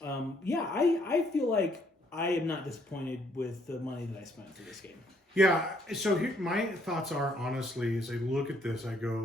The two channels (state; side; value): normal; both; correlation 0.67